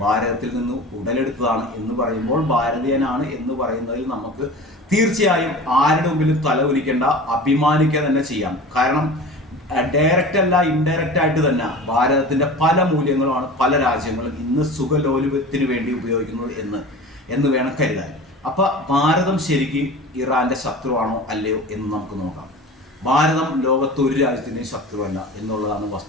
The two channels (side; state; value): both; normal; correlation 0.36